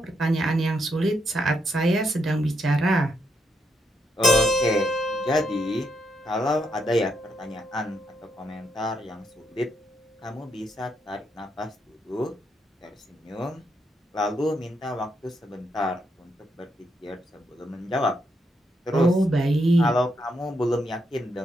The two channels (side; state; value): both; normal; correlation 0.79